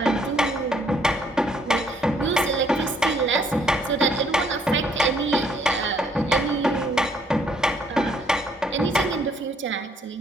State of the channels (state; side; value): normal; both; correlation 0.66